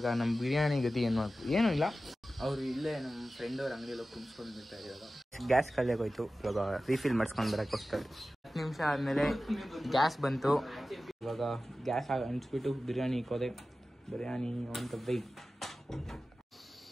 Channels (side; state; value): both; normal; correlation 0.95